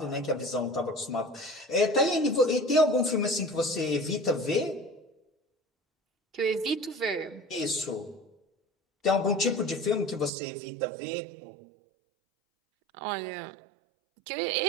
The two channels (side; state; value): left; drops out; at 10.3 s